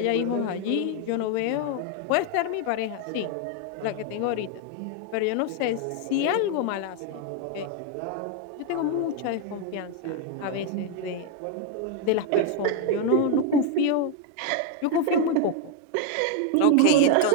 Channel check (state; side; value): different; both; correlation 0.01